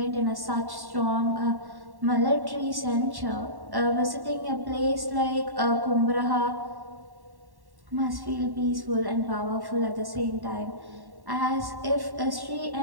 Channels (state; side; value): late; left; 1.1 ms